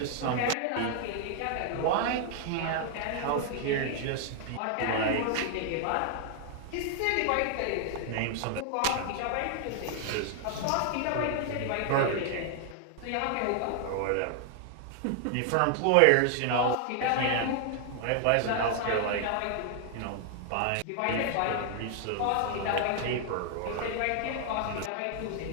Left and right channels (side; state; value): both; different; correlation 0.00